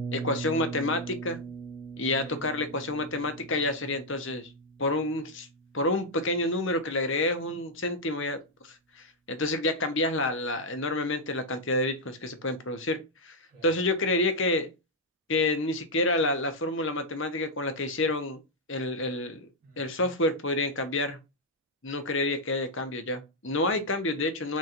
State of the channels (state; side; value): normal; both; correlation -0.02